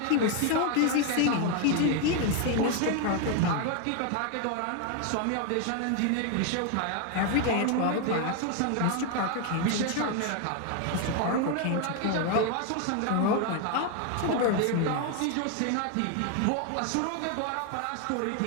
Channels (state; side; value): different; both; correlation 0.01